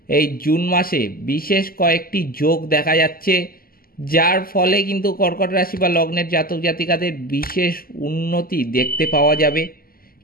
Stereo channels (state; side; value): late; right; 0.42 ms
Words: এই জুন মাসে বিশেষ কয়েকটি যোগ দেখা যাচ্ছে, যার ফলে কিন্তু কর্কট রাশি বা লগ্নের জাতক জাতিকাদের বিশেষ উন্নতি দেখতে পাওয়া যাবে।